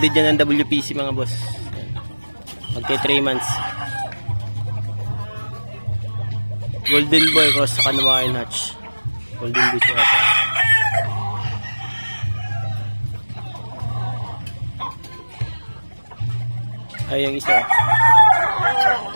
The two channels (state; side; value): inverted; both; correlation -1.00